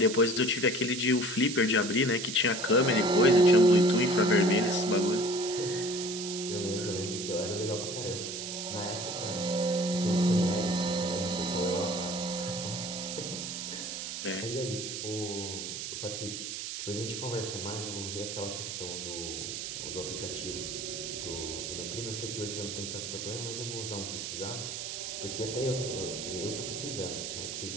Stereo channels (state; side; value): noise; right; hiss, 6 dB below the sound